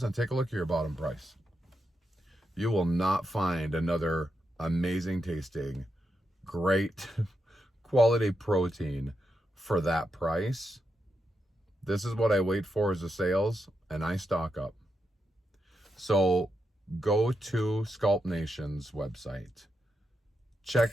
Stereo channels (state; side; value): normal; both; correlation 0.85